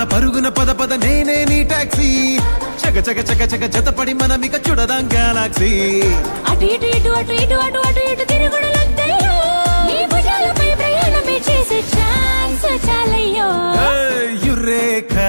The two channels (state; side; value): inverted; both; correlation -1.00